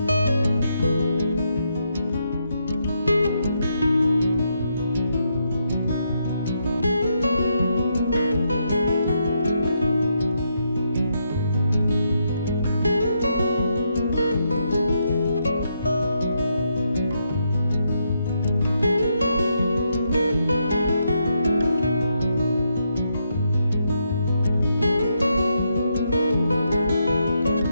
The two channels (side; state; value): both; inverted; correlation -0.80